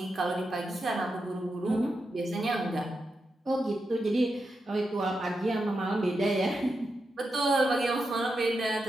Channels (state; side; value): normal; both; correlation 0.87